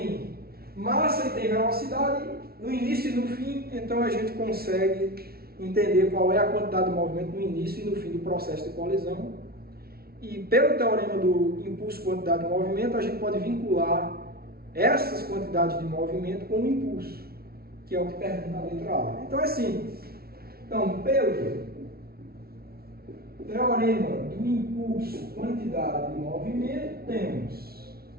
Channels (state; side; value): late; left; 0.44 ms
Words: massa e tem velocidade no início e no fim, então a gente consegue entender qual é a quantidade de movimento no início e no fim do processo de colisão. E pelo teorema do impulso quantidade de movimento, a gente pode vincular essas quantidades de movimento com o impulso, que é o que pergunta na letra A. Então é simples. Então, pelo teorema do impulso quantidade de movimento, temos